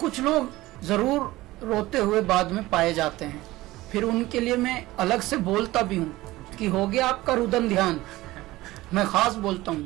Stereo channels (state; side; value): quieter; left; 18.0 dB